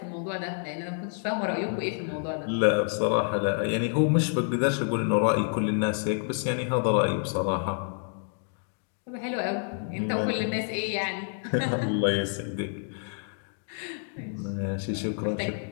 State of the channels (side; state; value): right; silent; 59 dB below the other